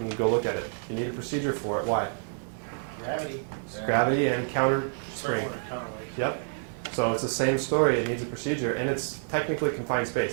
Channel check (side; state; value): left; silent; digital silence